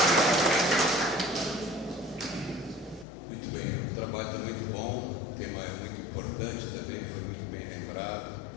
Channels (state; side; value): drops out; right; at 3.1 s